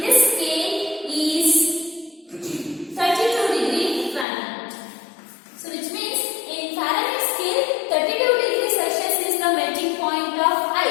this scale is 32 degree Fahrenheit. So which means in Fahrenheit scale 32 degrees Celsius is the melting point of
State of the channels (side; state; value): right; drops out; at 4.2 s